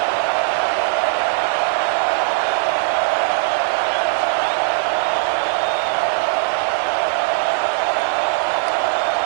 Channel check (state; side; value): silent; left; 65 dB below the other